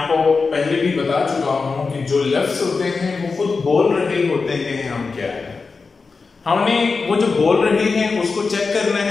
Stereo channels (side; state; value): right; quieter; 4.5 dB